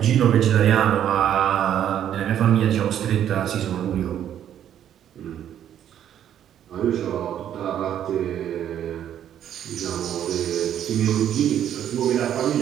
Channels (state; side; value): quieter; left; 10.3 dB